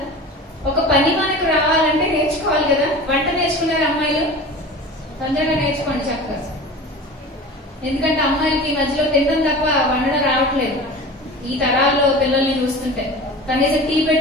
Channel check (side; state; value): both; normal; correlation 0.35